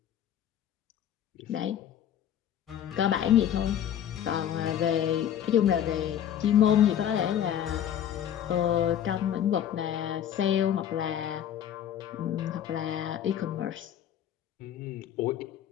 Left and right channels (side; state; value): right; quieter; 10.1 dB